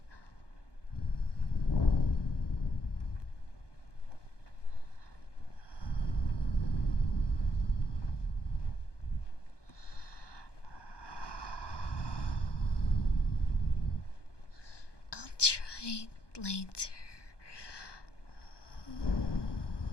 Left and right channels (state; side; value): late; right; 1.2 ms